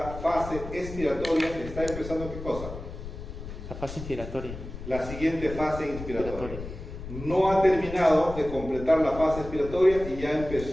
fase expiratoria está empezando ¿qué cosa? La fase inspiratoria. La siguiente fase inspiratoria. No ha terminado de completar la fase expiratoria y ya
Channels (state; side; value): noise; left; rumble, 10 dB below the sound